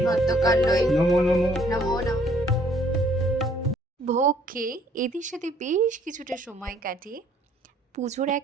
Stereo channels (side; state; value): both; normal; correlation 0.62